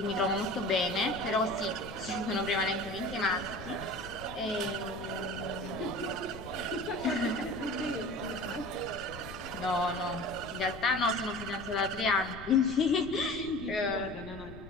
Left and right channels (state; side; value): noise; left; rumble, 14 dB below the sound